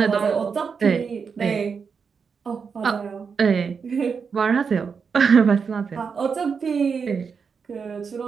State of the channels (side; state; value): left; quieter; 5.9 dB